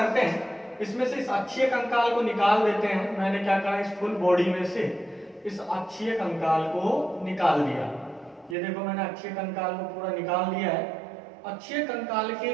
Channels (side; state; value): left; drops out; at 8.6 s